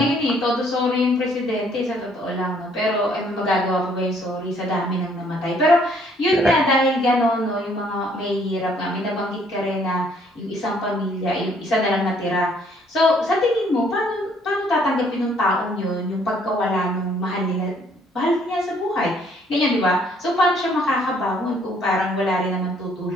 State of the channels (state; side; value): normal; both; correlation 0.64